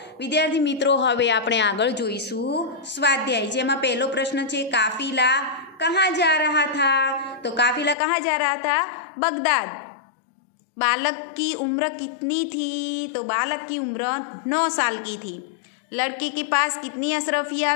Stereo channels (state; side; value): drops out; right; at 8.0 s